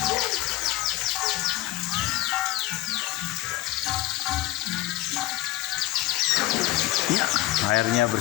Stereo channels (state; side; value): quieter; right; 17.0 dB